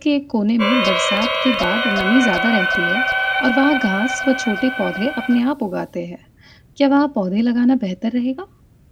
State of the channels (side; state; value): both; identical; correlation 1.00